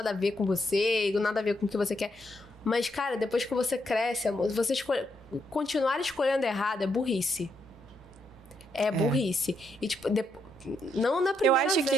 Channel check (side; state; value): both; normal; correlation 0.78